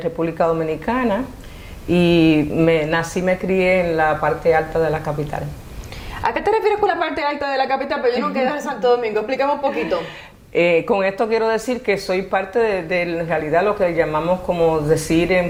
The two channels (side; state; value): both; identical; correlation 1.00